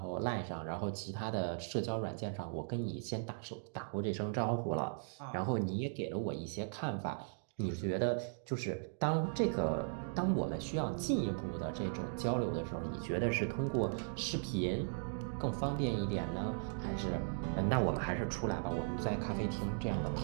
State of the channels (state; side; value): silent; left; digital silence